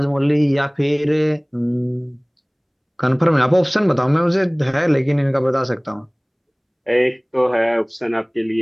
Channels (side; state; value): both; identical; correlation 1.00